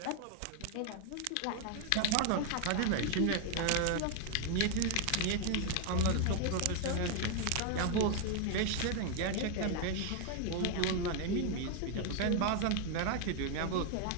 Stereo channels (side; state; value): both; different; correlation 0.01